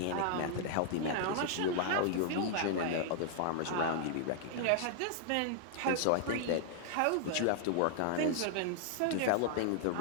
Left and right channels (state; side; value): different; both; correlation -0.01